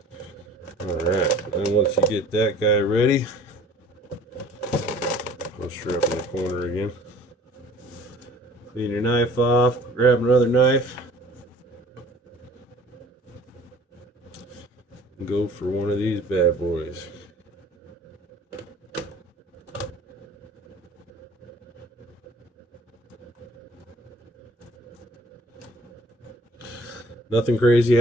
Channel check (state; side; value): normal; both; correlation 0.51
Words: Alright, and once you get that guy ready, post her up in the corner again. Clean your knife off, grab another knife, and go for one of these bad boys. Nothing crazy